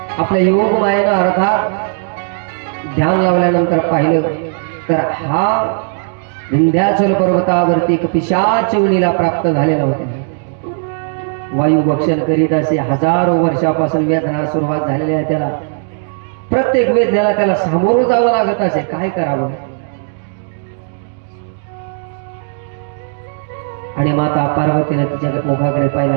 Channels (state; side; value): silent; left; digital silence